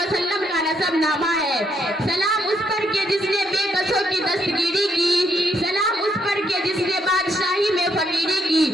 का नसब नामा है। सलाम उस पर के जिसने बेकसों की दस्तगीरी की, सलाम उस पर के जिसने बादशाही में फकीरी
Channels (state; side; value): normal; both; correlation 0.75